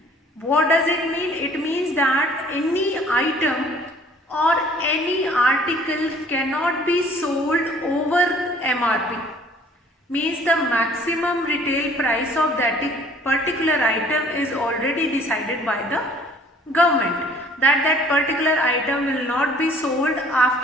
What does it mean? It means that any item or any article cannot be sold over MRP. Means the maximum retail price of that particular item is already decided by the government. That particular item will not be sold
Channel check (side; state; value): both; normal; correlation 0.55